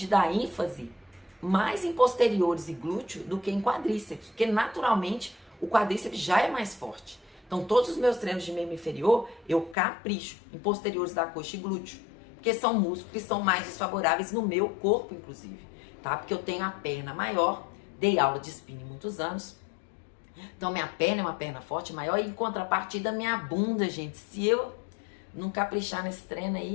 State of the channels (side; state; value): right; drops out; at 9.8 s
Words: dar ênfase mais em posteriores e glúteo do que em quadríceps, porque naturalmente o quadríceps já é mais forte. Então, todos os meus treinos de membro inferior, eu capricho em posteriores da coxa e glúteo, porque são músculos que são mais desfavoráveis no meu corpo, inclusive, tá? Porque eu tenho a perna maior, dei aula de spinning muitos anos, então minha perna é uma perna forte, maior, e em contrapartida minha bunda, gente, se eu não caprichar nesse treino